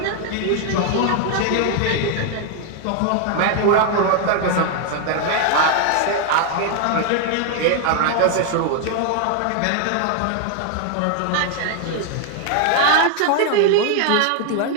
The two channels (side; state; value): both; different; correlation 0.00